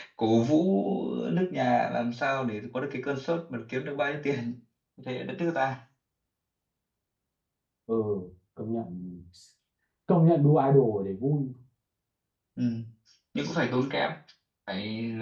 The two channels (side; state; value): both; identical; correlation 1.00